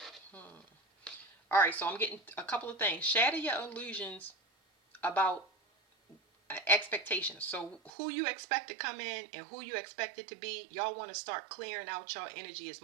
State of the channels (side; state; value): left; drops out; at 7.9 s